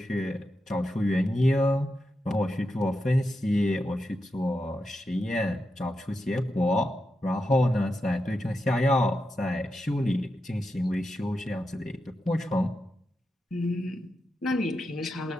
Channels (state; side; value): normal; both; correlation 0.88